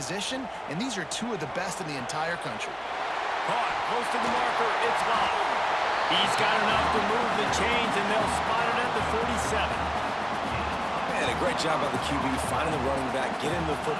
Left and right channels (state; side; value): identical; both; correlation 1.00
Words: and these are two of the best in the entire country. Caught close to the marker, it's Love. He's got enough to move the chains, and they'll spot it at the 47. Man, a great job by the QB finding the running back, get him the